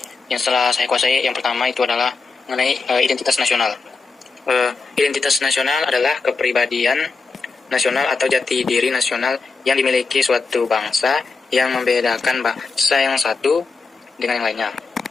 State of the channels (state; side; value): quieter; right; 4.3 dB